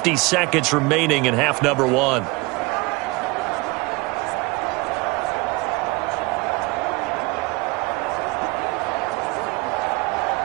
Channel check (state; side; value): quieter; left; 25.1 dB